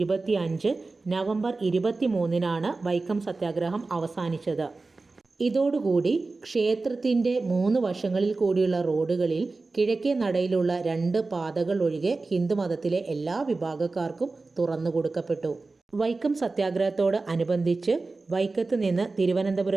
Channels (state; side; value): quieter; left; 3.6 dB